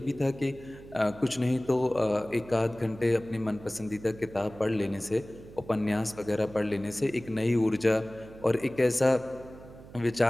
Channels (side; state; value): right; noise; hum, 18 dB below the sound